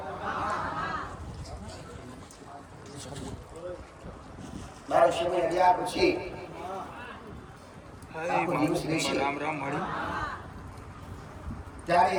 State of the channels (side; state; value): both; identical; correlation 1.00